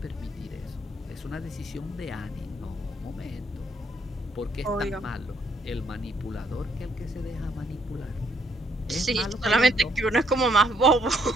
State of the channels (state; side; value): normal; both; correlation 0.70